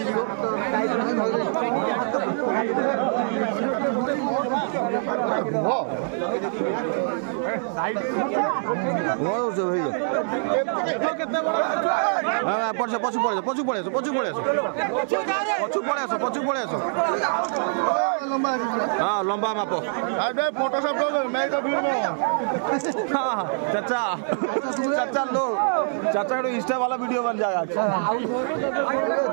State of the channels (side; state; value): left; silent; digital silence